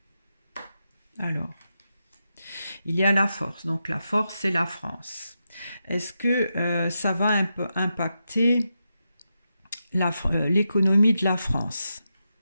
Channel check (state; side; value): inverted; both; correlation -0.87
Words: Alors, il y a la force. Donc, la force, c'est la France. Est-ce que ça va impacter l'économie de la France?